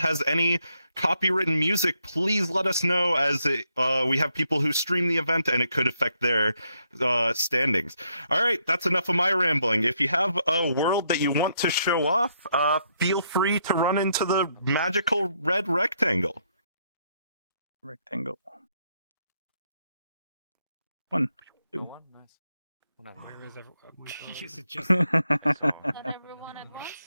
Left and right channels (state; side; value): inverted; both; correlation -0.76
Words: any copywritten music, please let us know, as we have people who stream the event and it could affect their standings. All right, that's enough of my rambling. If you have a world that you want to show off, feel free to run into the magical red rectangle. Rectangle. 1, 2. Where is everyone? Is it just Not everyone at once?